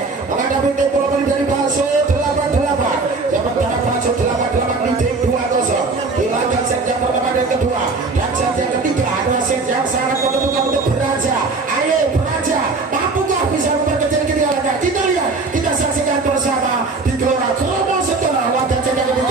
menghadapi tim bola voli dari Baso 88. Sementara Baso 88 leading 2-0 di laga set yang pertama dan kedua. Dan set yang ketiga adalah set yang sangat menentukan untuk Beraja. Ayo Beraja, mampukah bisa memperkecil ketinggalannya? Kita lihat, kita saksikan bersama di Gelora Kromo Setara laga set yang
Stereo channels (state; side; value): quieter; left; 3.9 dB